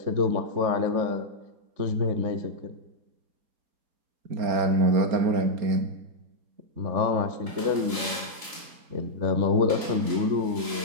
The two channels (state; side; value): late; left; 4.0 ms